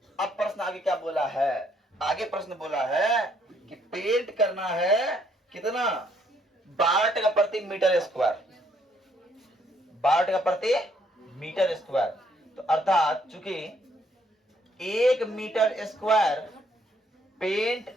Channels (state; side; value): normal; both; correlation 0.68